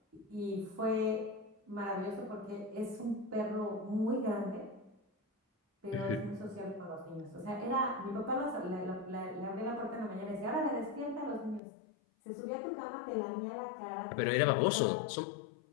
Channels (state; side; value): drops out; right; at 11.6 s